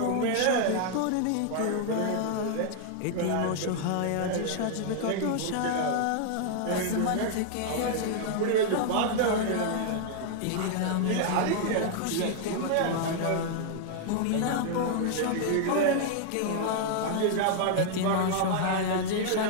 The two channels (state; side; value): different; both; correlation -0.01